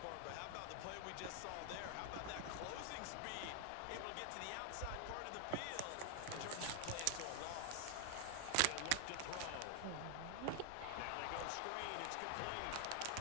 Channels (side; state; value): both; different; correlation 0.00